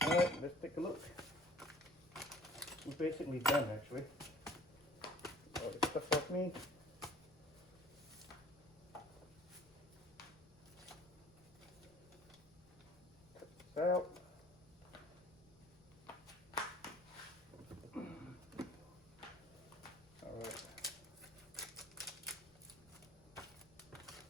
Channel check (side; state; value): left; noise; rumble, 26 dB below the sound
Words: Alright, let's take a look. We're basically done, actually. All this stuff off me. Cut this out. Alright.